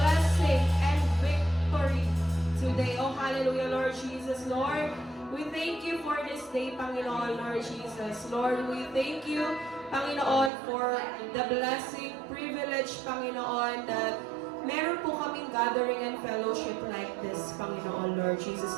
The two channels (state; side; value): drops out; left; at 10.5 s